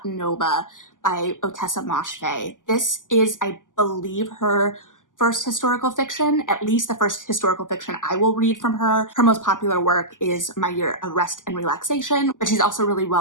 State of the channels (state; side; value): late; right; 0.88 ms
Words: Nova by Otessa Moshfegh. This is, I believe, her first historical fiction, at least the first historical fiction I will read from her. Her most popular work is My Year of Rest and Relaxation, but she's also really